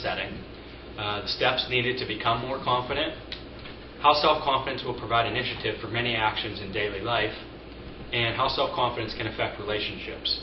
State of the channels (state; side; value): identical; both; correlation 1.00